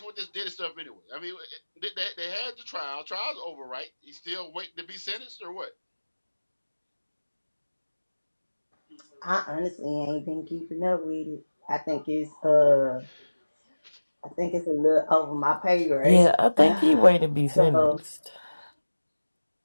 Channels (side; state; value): both; inverted; correlation -1.00